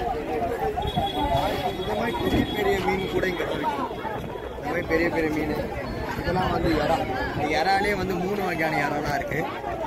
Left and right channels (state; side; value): identical; both; correlation 1.00